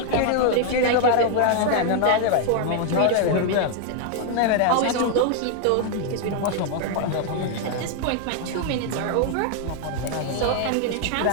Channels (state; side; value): different; both; correlation 0.00